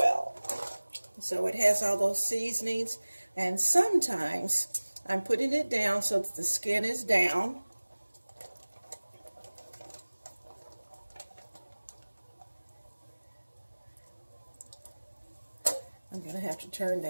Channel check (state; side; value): inverted; both; correlation -1.00